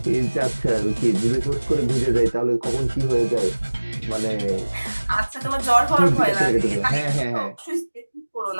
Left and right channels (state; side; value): inverted; both; correlation -1.00